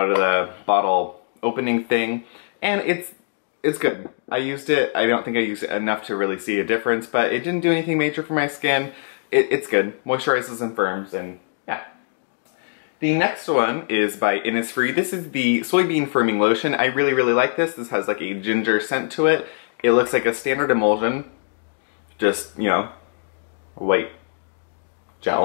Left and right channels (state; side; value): silent; right; digital silence